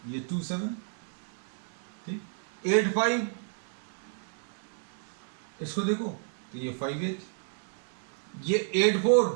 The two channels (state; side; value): silent; left; digital silence